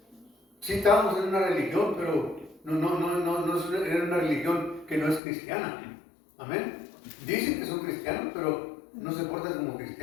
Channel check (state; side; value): drops out; right; at 5.2 s